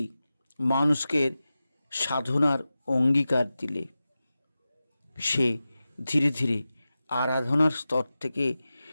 মানুষকে সাধনার অঙ্গীকার দিলে সে ধীরে ধীরে আরাধনার স্তর থেকে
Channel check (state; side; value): inverted; both; correlation -0.94